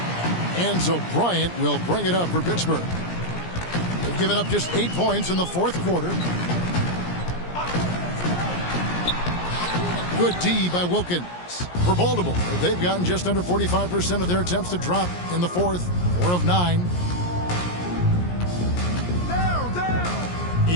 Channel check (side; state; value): right; late; 17 ms